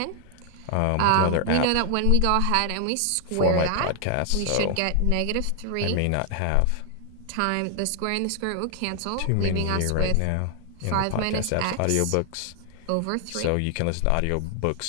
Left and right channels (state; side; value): different; both; correlation 0.00